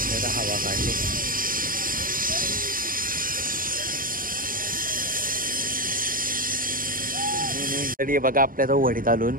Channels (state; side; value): late; left; 0.41 ms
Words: हवा काढली. तरी बघा आपल्या तो वडीत आलून